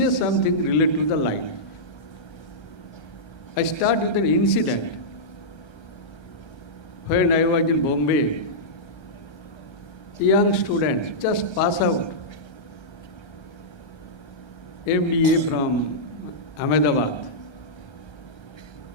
something related to the life. I start with an incident. When I was in Bombay, young students just pass out, MBA from Ahmedabad.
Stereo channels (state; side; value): late; right; 1.3 ms